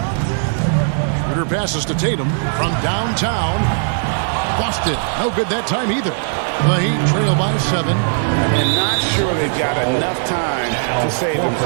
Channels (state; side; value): silent; left; digital silence